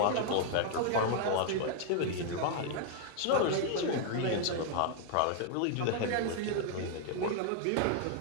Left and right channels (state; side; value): different; both; correlation 0.00